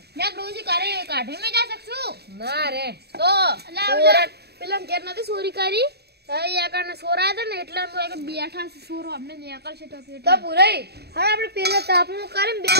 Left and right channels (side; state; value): left; late; 0.47 ms